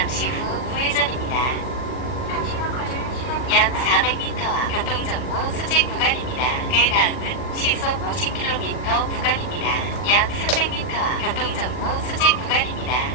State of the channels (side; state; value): right; late; 40 ms